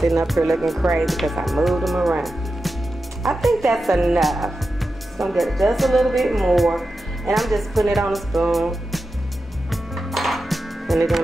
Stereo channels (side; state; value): both; normal; correlation 0.91